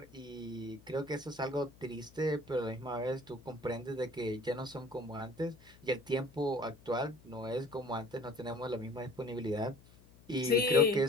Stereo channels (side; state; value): left; noise; hum, 24 dB below the sound